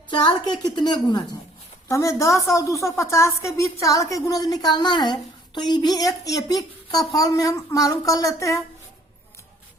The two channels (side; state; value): both; normal; correlation 0.59